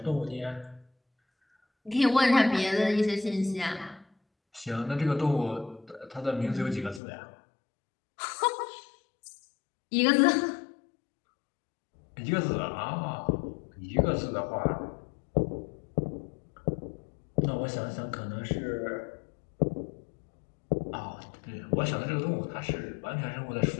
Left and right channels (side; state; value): right; drops out; at 7.0 s